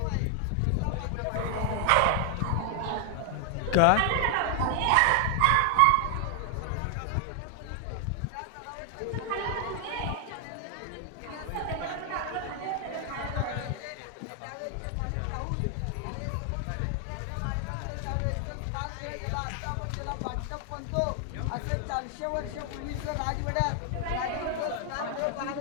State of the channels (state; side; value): different; both; correlation 0.00